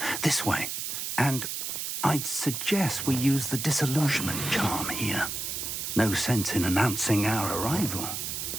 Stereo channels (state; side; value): noise; right; hiss, 4 dB below the sound